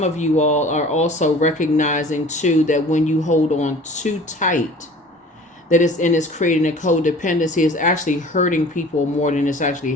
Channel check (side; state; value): both; normal; correlation 0.45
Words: of you all are also recognizing too that when you hold on too tight, that it's creating a codependency. It's actually hurting people more than it's actually